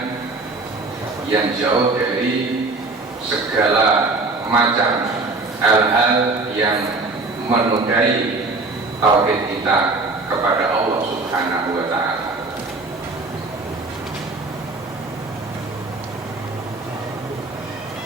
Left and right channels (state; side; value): quieter; left; 3.5 dB